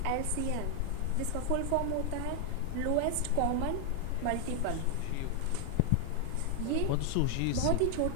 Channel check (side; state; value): both; different; correlation 0.00